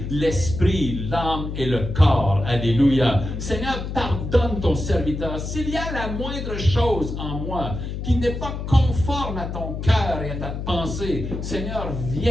l'esprit, l'âme et le corps. Alléluia. Seigneur, pardonne ton serviteur. S'il y a la moindre chose en moi qui n'est pas conforme à ton cœur et à ta pensée, Seigneur,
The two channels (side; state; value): left; noise; hum, 5 dB below the sound